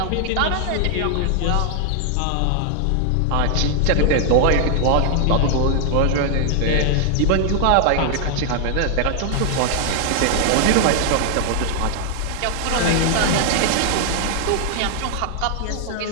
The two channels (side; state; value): both; different; correlation 0.00